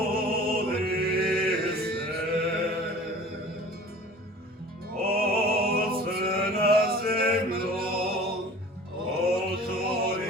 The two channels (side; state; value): both; normal; correlation 0.43